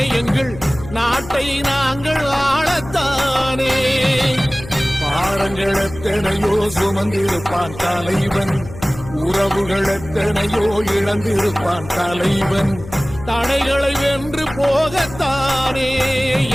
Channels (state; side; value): noise; left; hum, 14 dB below the sound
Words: எங்கள் நாட்டை நாங்கள் ஆளத்தானே பாரங்கள் எத்தனையோ சுமந்திருப்பான் தலைவன் உறவுகள் எத்தனையோ இழந்திருப்பான் தலைவன் தடைகளை வென்று போகத்தானே